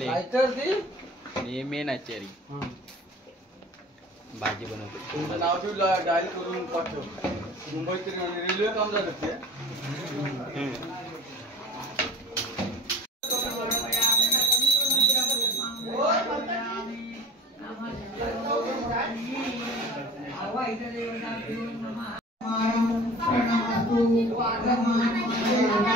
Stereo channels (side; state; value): both; normal; correlation 0.40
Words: मेन आचारी भाजी बनवतो नाव ठेवलं डायल करून पाठव मुंबईत रेल्वे काम झालं ते